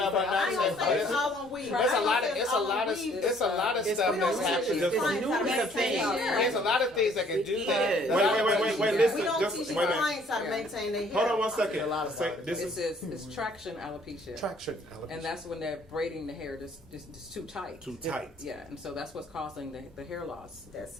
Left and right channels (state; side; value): normal; both; correlation 0.60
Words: ain't gonna say it's all on weave. It's a lot of stuff that's happening. There's a lot of things that can do that. Wait, listen. We don't teach clients how to maintain their hair. Hold on 1 second. It's traction alopecia. Traction alopecia. And that's when they're braiding the hair just too tight. Too tight. Yeah, and so that's what's causing the hair loss.